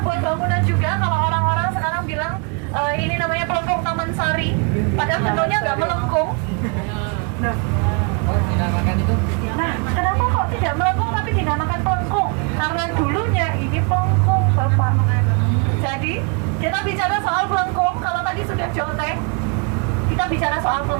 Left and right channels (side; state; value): left; quieter; 34.9 dB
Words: bangunan juga. Kalau orang-orang sekarang bilang ini namanya Pelengkung Taman Sari, padahal bentuknya nggak melengkung. Nah, kenapa kok tidak melengkung tapi dinamakan pelengkung? Karena dulunya ini pelengkung, Bapak. Jadi, kita bicara soal pelengkung. Kalau tadi sudah joteng, kita bicara soal